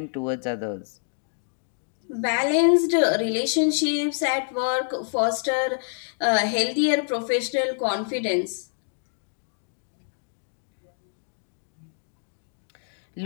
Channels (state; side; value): silent; right; digital silence